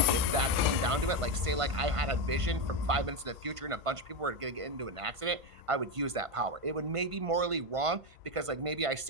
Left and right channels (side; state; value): left; late; 1.5 ms